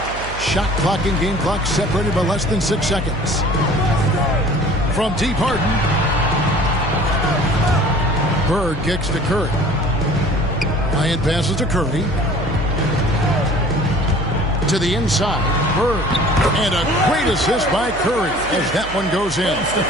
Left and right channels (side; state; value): right; noise; hum, 12 dB below the sound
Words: Shot clock and game clock separated by less than 6 seconds. From deep, Harden. Bird kicks to Curry. Bryant passes to Curry. To the inside, Bird. And a great assist by Curry as that one goes in.